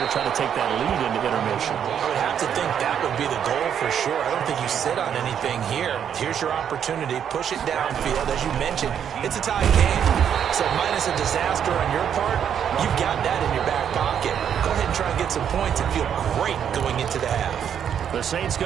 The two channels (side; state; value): left; quieter; 8.6 dB